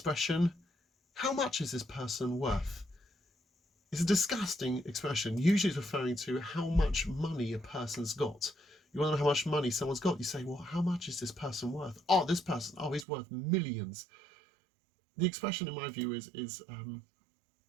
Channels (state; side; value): drops out; left; at 13.1 s